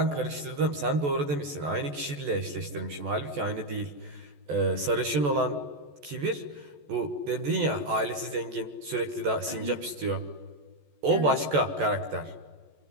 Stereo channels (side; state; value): left; late; 14 ms